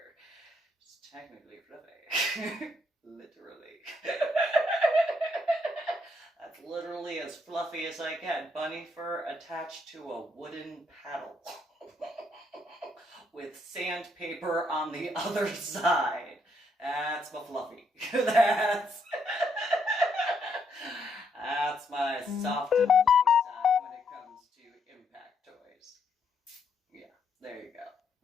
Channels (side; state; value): both; normal; correlation 0.74